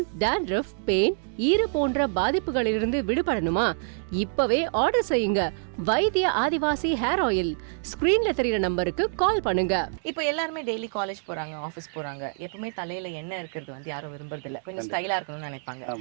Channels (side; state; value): left; silent; digital silence